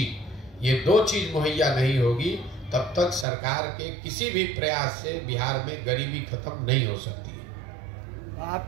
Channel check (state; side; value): drops out; left; at 3.2 s